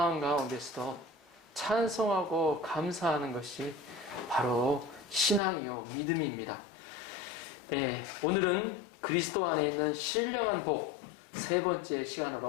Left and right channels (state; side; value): drops out; right; at 5.4 s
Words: 가운데서도 찬송하고 감사하는 것이 바로 신앙이요 믿음입니다. 오늘은 그리스도 안에 있는 신령한 복 세 번째